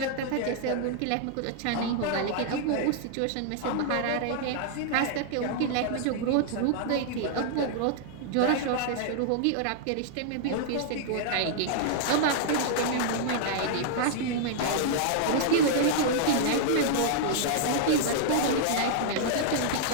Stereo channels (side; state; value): both; different; correlation -0.01